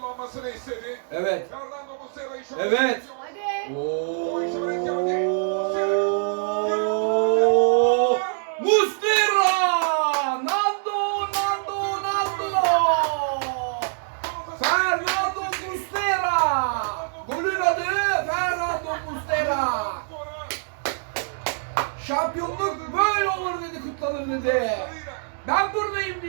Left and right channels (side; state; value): left; silent; digital silence